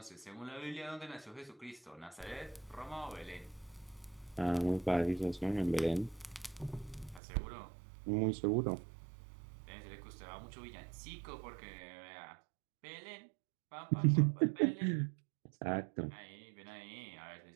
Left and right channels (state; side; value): drops out; left; at 7.2 s